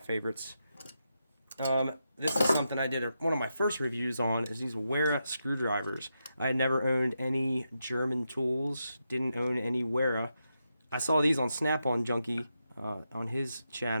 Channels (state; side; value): inverted; both; correlation -0.86